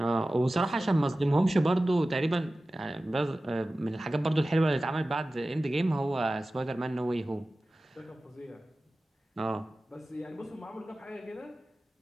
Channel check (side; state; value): both; normal; correlation 0.96